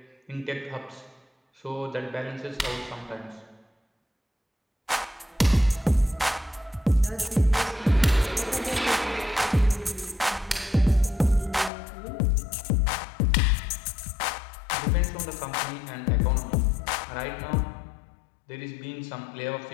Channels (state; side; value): drops out; right; at 11.7 s